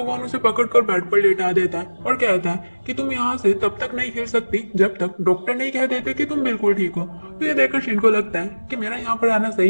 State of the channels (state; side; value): inverted; both; correlation -1.00